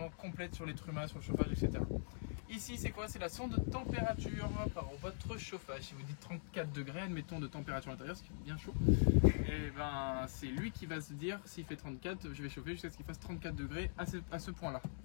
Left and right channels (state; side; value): silent; right; digital silence